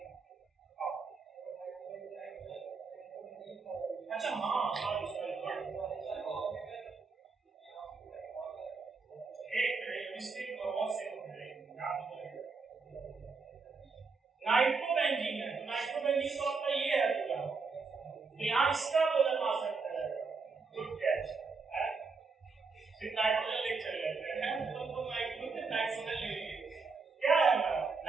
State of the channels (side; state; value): left; quieter; 4.6 dB